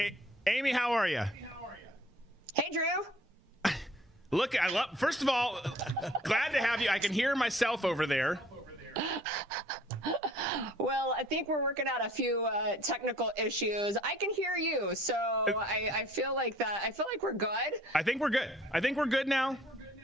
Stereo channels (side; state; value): both; normal; correlation 0.55